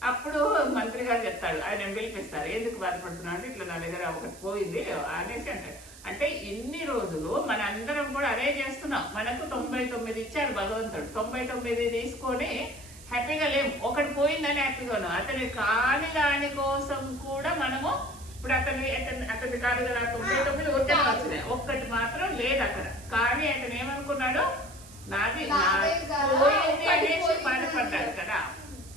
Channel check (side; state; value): right; noise; hiss, 19 dB below the sound